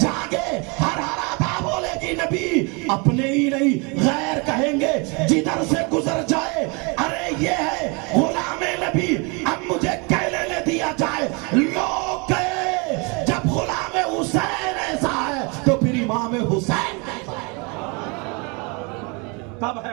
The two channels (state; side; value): quieter; left; 30.8 dB